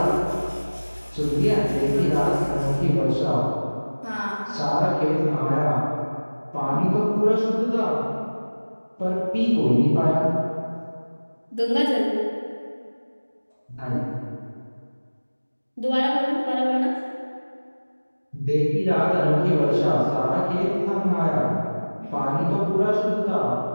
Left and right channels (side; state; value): both; inverted; correlation -1.00